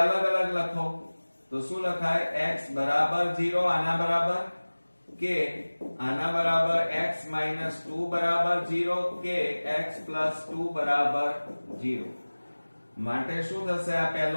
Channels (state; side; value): inverted; both; correlation -1.00